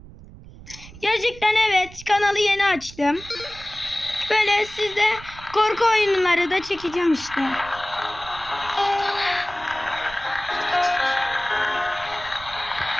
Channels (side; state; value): right; noise; rumble, 18 dB below the sound